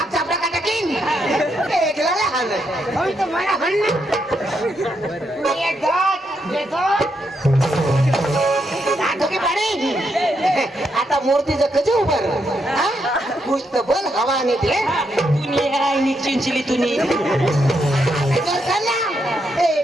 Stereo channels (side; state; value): both; normal; correlation 0.79